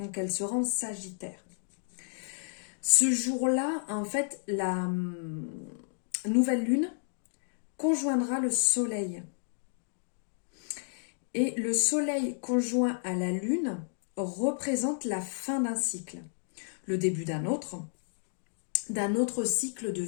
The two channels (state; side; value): silent; right; digital silence